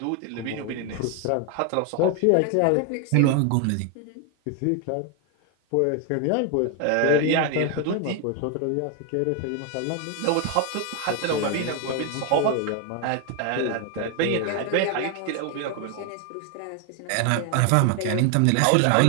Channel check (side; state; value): both; different; correlation 0.01